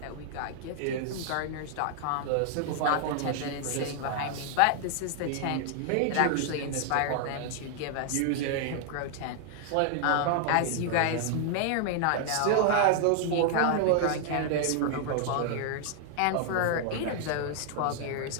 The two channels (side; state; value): both; different; correlation 0.00